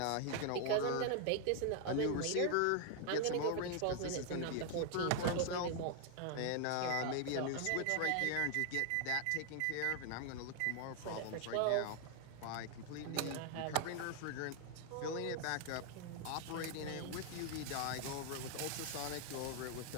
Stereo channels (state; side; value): different; both; correlation 0.00